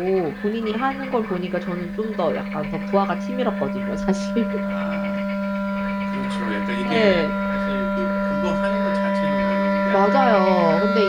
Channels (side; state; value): both; identical; correlation 1.00